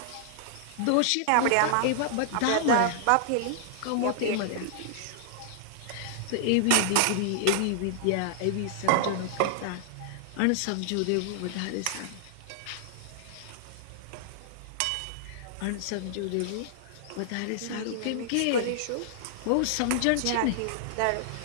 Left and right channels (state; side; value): different; both; correlation -0.01